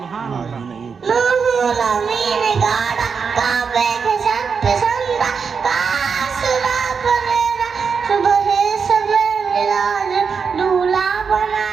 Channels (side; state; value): left; quieter; 5.8 dB